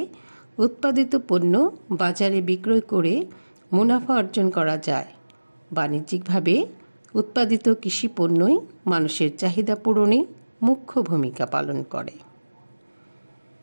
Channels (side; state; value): both; inverted; correlation -1.00